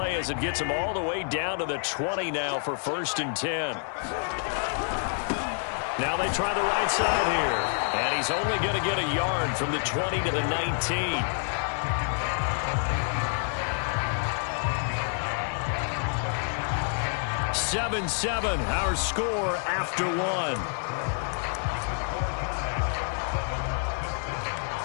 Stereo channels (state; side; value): silent; right; 59 dB below the other